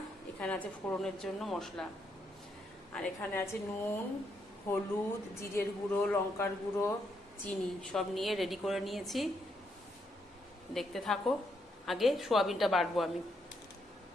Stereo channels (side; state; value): both; normal; correlation 0.77